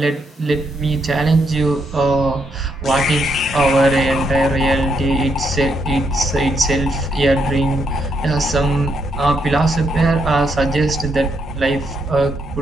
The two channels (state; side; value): normal; both; correlation 0.77